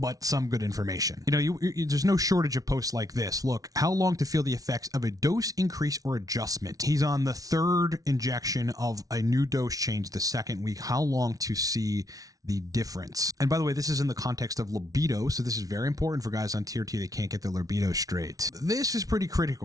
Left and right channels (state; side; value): late; left; 0.18 ms